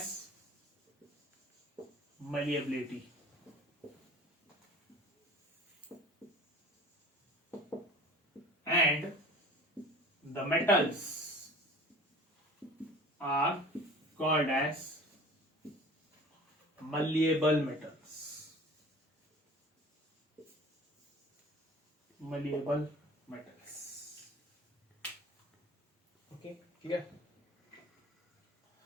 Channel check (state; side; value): normal; both; correlation 0.42